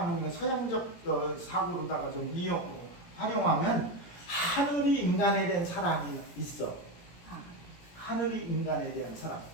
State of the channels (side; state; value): right; late; 17 ms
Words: 서양적 사고로다가 좀 활용하면 하늘이 인간에 대한 사랑이 있어. 하늘이 인간에 대한 사랑.